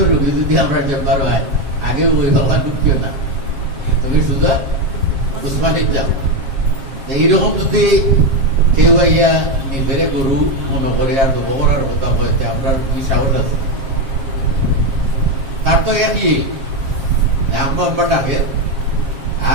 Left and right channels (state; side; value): late; left; 7.4 ms